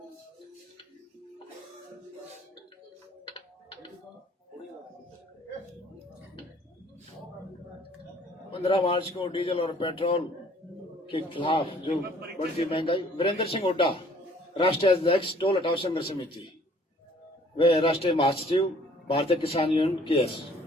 पंद्रह मार्च को डीजल और पेट्रोल के खिलाफ जो बढ़ती महंगाई, वीरेंद्र सिंह हुड्डा, राष्ट्रीय अध्यक्ष टोल हटाओ संघर्ष समिति, वे राष्ट्रीय महासचिव भारतीय किसान यूनियन केएस।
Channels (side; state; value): both; normal; correlation 0.57